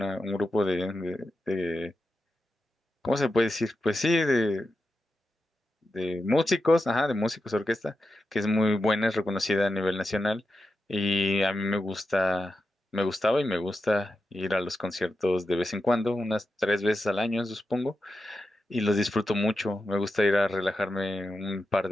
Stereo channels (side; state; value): both; normal; correlation 0.89